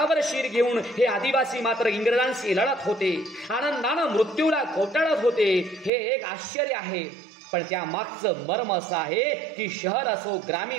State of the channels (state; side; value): drops out; left; at 5.9 s